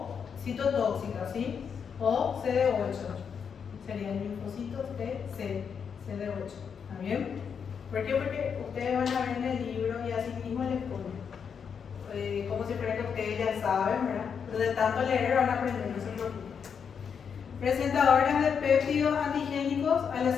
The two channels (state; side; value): quieter; right; 6.8 dB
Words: citotóxicas, ¿sí? O CD8. Serían linfocitos TC, CD8. ¿Está bien? ¿Por qué? Porque ustedes van a ver en el libro y así mismo les ponen. Como si fuera que ustedes ya saben, ¿verdad? Pero de tanto leer van a aprender, no se preocupen. Presentadoras de péptidos antigénicos a las